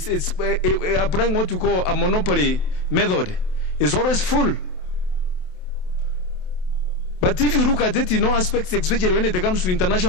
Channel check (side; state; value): right; late; 27 ms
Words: applying what you call a monopoly method. It's always full. But if you look at it in all aspects, especially when it comes to